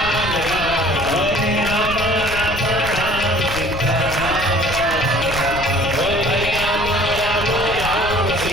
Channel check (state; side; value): noise; left; rumble, 9 dB below the sound